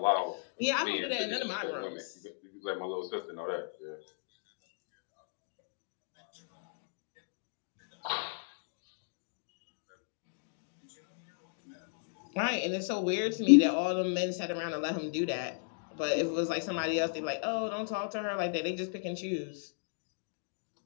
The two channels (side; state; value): right; silent; digital silence